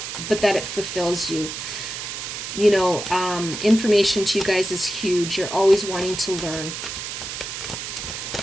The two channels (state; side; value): noise; right; hiss, 7 dB below the sound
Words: fulfills you. Information to you guys is huge. You're always wanting to learn.